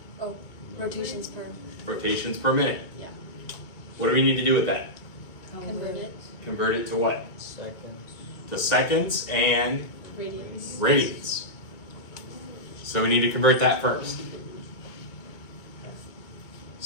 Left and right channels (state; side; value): late; right; 2.3 ms